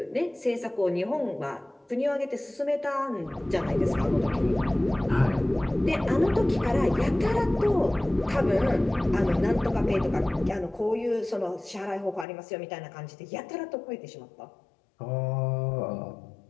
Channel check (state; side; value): drops out; right; at 12.2 s